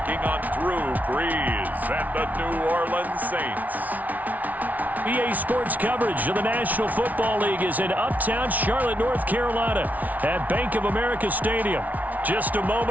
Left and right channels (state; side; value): late; left; 0.075 ms